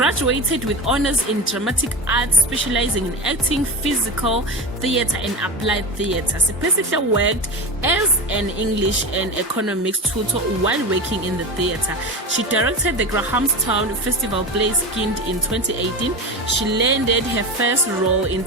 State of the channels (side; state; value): both; normal; correlation 0.24